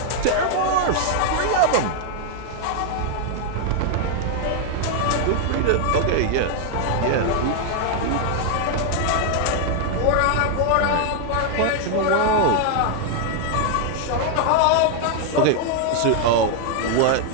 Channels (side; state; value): both; different; correlation 0.00